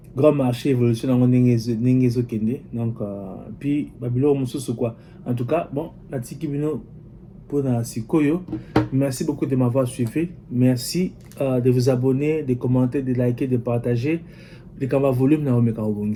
grand marché évolution dans Nengezo Kende, donc puis Babylon Moussou quoi. En tout cas bon la Tikibino pour la Sikoyo. Merci beaucoup de m'avoir suivi. Merci de vous abonner, de commenter, de liker, de partager. De Kamba volume na omeka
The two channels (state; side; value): identical; both; correlation 1.00